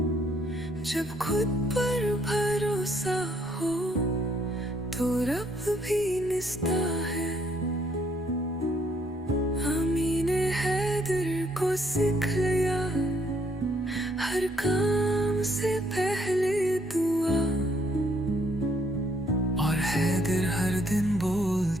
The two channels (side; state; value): both; normal; correlation 0.69